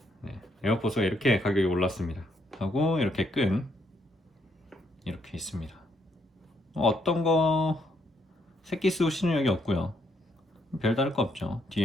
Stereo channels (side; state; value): both; normal; correlation 0.73